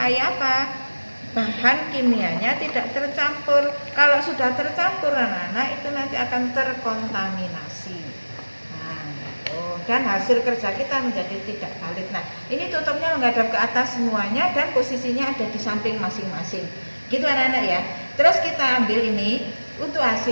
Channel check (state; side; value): inverted; both; correlation -1.00